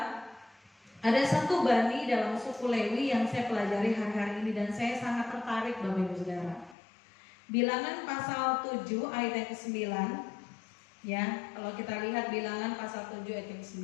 ada satu bani dalam suku Lewi yang saya pelajari hari-hari ini dan saya sangat tertarik, Bapak Ibu Saudara. Bilangan pasal 7 ayat yang ke-9. Ya, kalau kita lihat Bilangan pasal 7 ayat yang ke-9,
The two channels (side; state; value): right; drops out; at 6.8 s